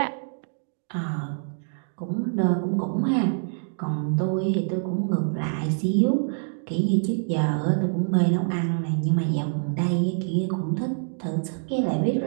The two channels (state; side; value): silent; left; digital silence